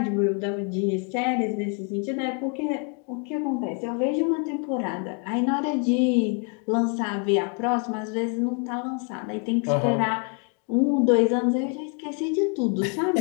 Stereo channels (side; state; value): right; quieter; 38.0 dB